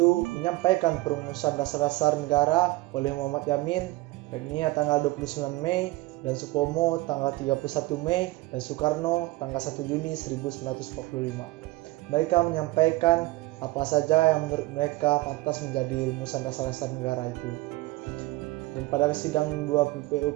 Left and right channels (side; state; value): left; quieter; 19.8 dB